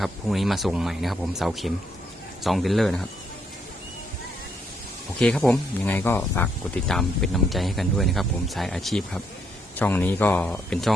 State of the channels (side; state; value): both; normal; correlation 0.74